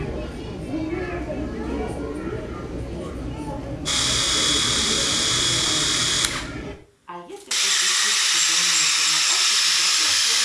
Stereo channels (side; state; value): both; identical; correlation 1.00